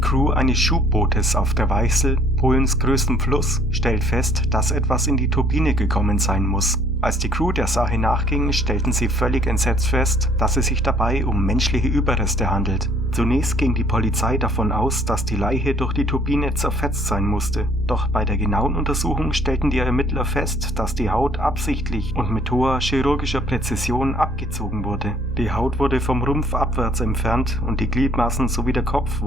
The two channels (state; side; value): normal; both; correlation 0.60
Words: eines Schubbootes auf der Weichsel, Polens größtem Fluss, stellt fest, dass etwas in die Turbine gekommen sein muss. Als die Crew der Sache nachging, stellten sie völlig entsetzt fest, dass es sich dabei um menschliche Überreste handelt. Zunächst ging die Polizei davon aus, dass die Leiche durch die Turbine zerfetzt sein musste. Doch bei der genauen Untersuchung stellten die Ermittler fest, dass die Haut absichtlich und mit hoher chirurgischer Präzision abgezogen wurde. Die Haut wurde vom Rumpf abwärts entfernt und die Gliedmaßen sowie der Kopf